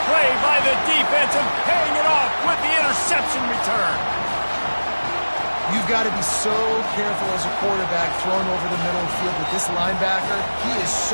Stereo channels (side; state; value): both; inverted; correlation -1.00